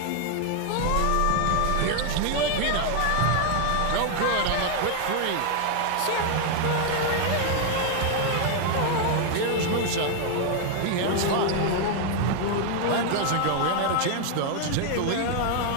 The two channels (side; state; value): both; different; correlation 0.00